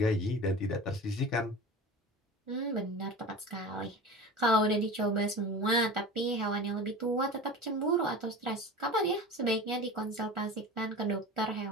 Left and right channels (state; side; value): normal; both; correlation 0.33